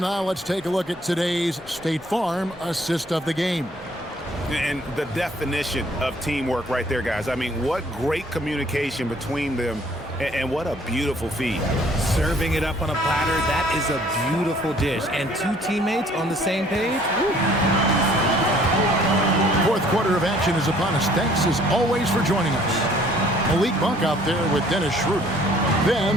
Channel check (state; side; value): normal; both; correlation 0.59